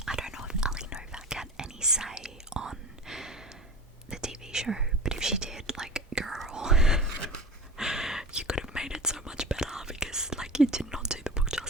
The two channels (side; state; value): both; normal; correlation 0.34